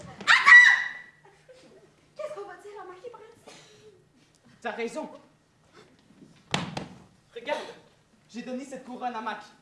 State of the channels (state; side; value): identical; both; correlation 1.00